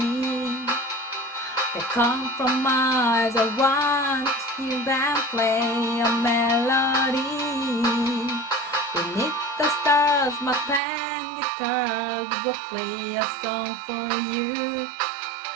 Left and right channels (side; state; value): left; drops out; at 10.8 s